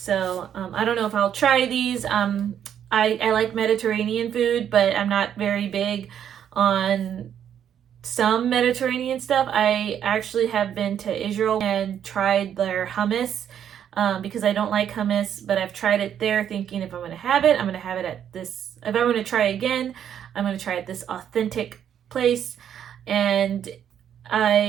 I don't know if I'll try these. I like Mediterranean food, but I'm not very big on some Mediterranean stuff. I actually have been to Israel and tried their hummus, because I don't like hummus, but I've tried it there thinking if I'm going to have it, I'm going to have it at this. If I'm going to try again, I'm going to try at this authentic place. And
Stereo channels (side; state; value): left; quieter; 9.3 dB